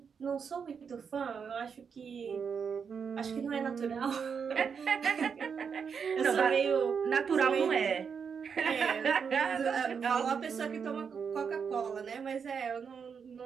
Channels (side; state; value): left; quieter; 6.4 dB